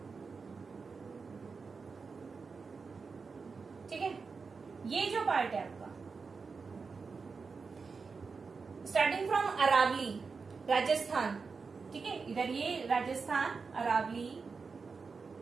ठीक है, ये जो पार्ट है आपका स्टार्टिंग फ्रॉम अरावली राजस्थान, ठीक है, इधर ये राजस्थान अरावली,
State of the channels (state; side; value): quieter; left; 4.9 dB